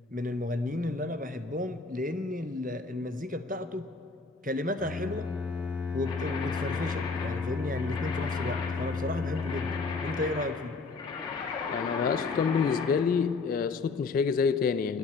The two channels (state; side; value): quieter; right; 4.1 dB